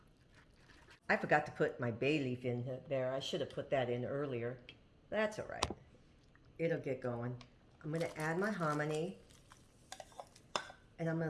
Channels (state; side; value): identical; both; correlation 1.00